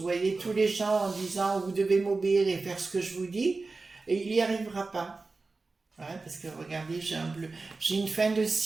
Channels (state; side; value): quieter; left; 3.8 dB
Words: voyez, tous les gens en disant « vous devez m'obéir et faire ce que je vous dis », et il n'y arrivera pas. Ouais, parce que regardez, j'ai une fin de